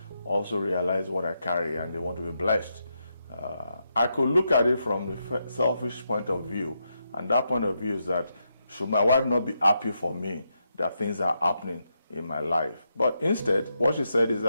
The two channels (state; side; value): inverted; both; correlation -0.83